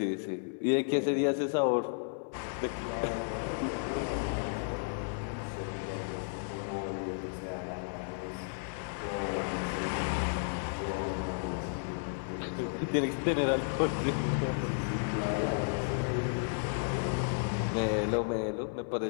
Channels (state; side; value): silent; right; 56 dB below the other